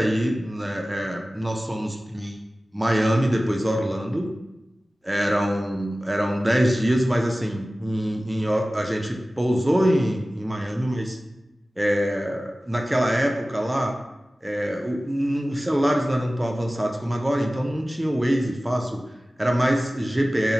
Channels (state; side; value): normal; both; correlation 0.97